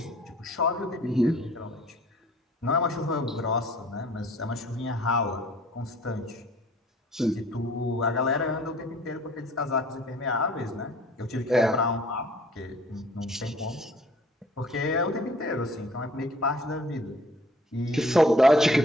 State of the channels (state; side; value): normal; both; correlation 0.54